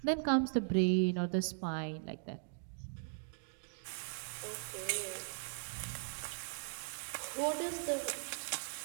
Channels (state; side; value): silent; left; digital silence